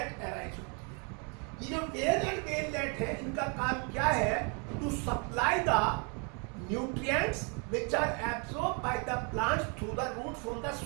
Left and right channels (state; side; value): quieter; left; 35.6 dB